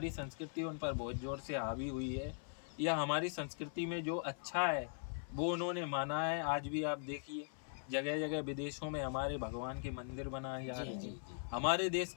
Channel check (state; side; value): silent; right; 51 dB below the other